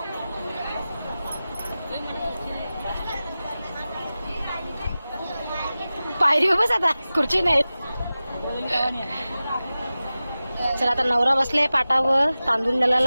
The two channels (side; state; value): both; inverted; correlation -0.96